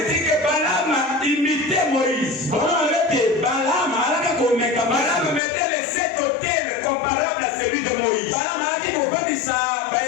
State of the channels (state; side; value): drops out; right; at 5.4 s